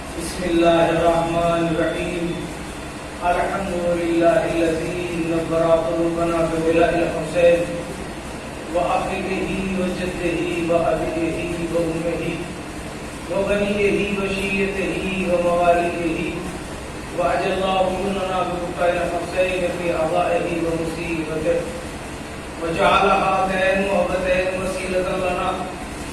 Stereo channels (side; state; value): both; identical; correlation 1.00